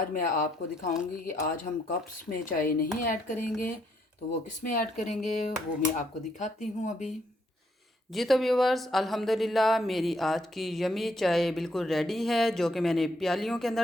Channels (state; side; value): normal; both; correlation 0.73